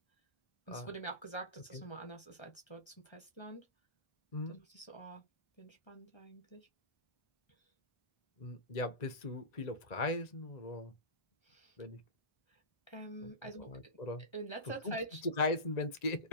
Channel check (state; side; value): late; right; 1.3 ms